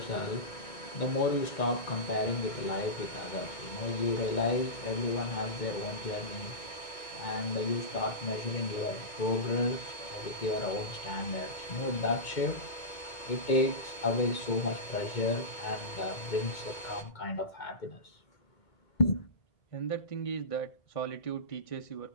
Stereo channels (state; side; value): late; right; 2.2 ms